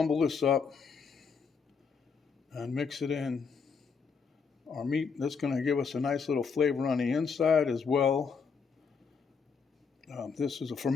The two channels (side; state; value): right; quieter; 5.5 dB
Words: this up and mix it in our meat. That's going to give us a nice little flavor on the inside as well. This is a